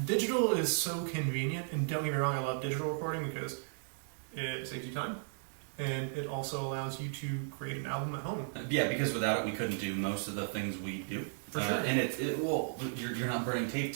Digital is so convenient, and don't get me wrong, I love digital recording because it saves you time, and it also allows you to create an album at home. Yeah, because without it, we couldn't do most of the things we do. For sure. And you're not burning tape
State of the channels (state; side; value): silent; left; digital silence